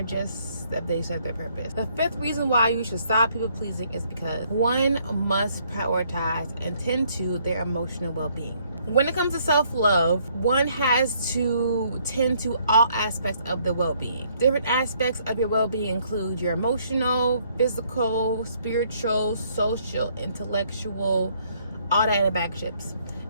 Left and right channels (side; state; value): both; inverted; correlation -0.67